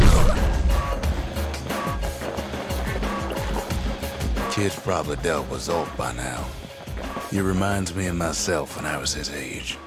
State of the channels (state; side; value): identical; both; correlation 1.00